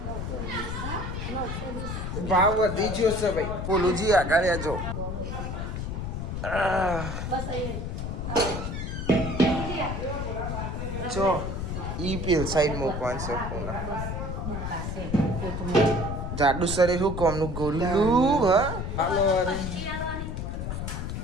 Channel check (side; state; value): left; noise; rumble, 4 dB below the sound